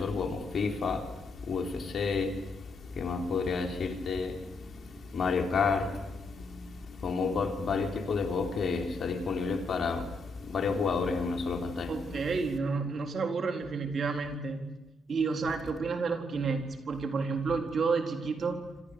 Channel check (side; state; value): both; normal; correlation 0.76